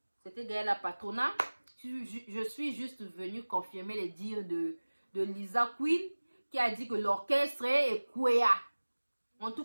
c'était Gaël la Patrona. Je suis juste venue confirmer les dires de Lisa Queen qui a dit que l'orchestre est Kwea. En tout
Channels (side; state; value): both; inverted; correlation -1.00